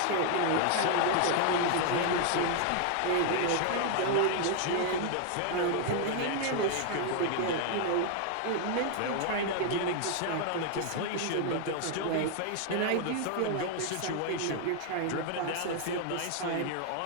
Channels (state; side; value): different; both; correlation 0.00